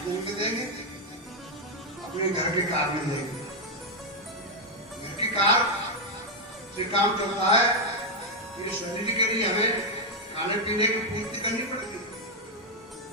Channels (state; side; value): normal; both; correlation 0.01